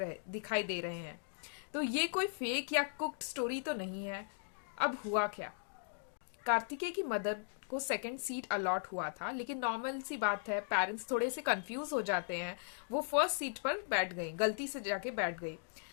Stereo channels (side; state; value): right; silent; digital silence